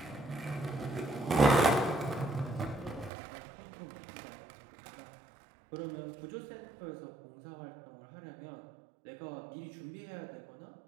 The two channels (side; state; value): left; drops out; at 3.1 s